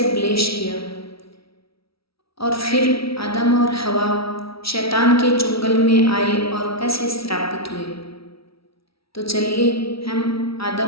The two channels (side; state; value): right; late; 0.75 ms